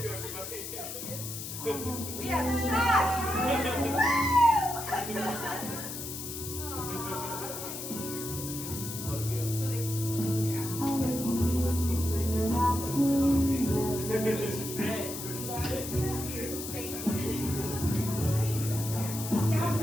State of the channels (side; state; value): left; noise; hiss, 7 dB below the sound